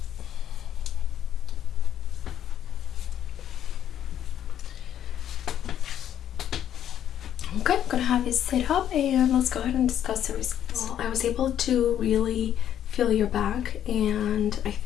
Okay, I'm gonna have you sit up and let's go ahead and discuss the results. Well, I was able to really feel your back, and I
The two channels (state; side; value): quieter; right; 10.4 dB